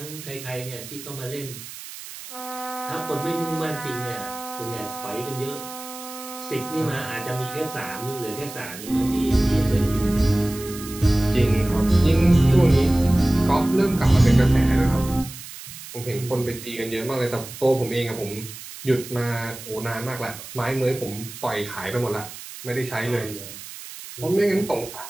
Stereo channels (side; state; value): right; noise; hiss, 13 dB below the sound